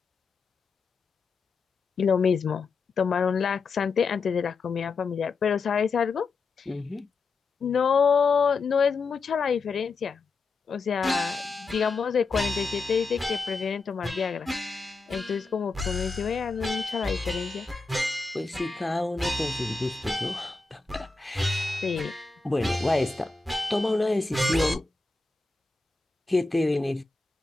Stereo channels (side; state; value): right; quieter; 4.2 dB